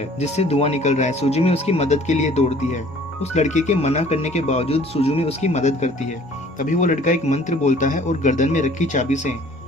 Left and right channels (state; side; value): normal; both; correlation 0.53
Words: जिससे धुआं निकल रहा है। सुजुमी उसकी मदद के लिए दौड़ती है। उस लड़के के मना करने के बावजूद सुजुमी उसकी मदद करती है। तभी वो लड़का एक मंत्र बोलता है और गर्दन में रखी चाबी से